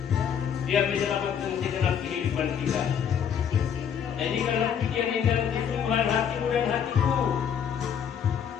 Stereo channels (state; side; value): quieter; right; 8.1 dB